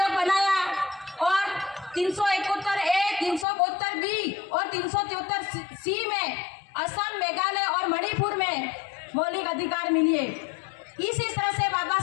बनाया और 371 ए, 372 बी और 373 सी में असम, मेघालय और मणिपुर में मौलिक अधिकार मिले। इसी तरह से बाबा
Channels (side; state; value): right; drops out; at 3.5 s